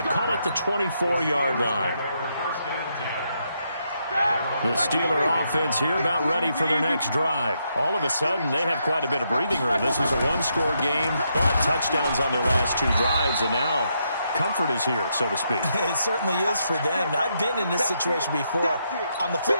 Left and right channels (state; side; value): inverted; both; correlation -0.79